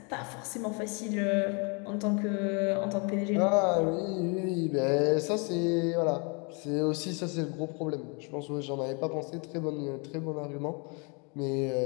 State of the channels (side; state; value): right; quieter; 33.2 dB